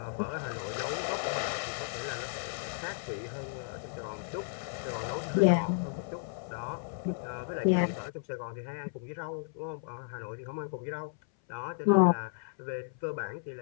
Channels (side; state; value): right; silent; 55 dB below the other